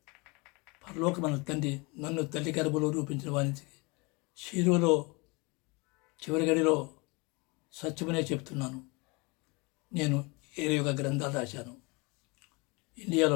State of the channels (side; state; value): right; quieter; 27.5 dB